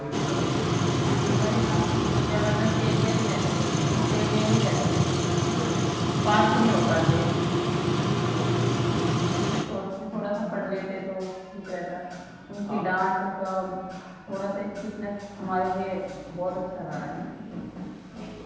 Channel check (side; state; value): both; identical; correlation 1.00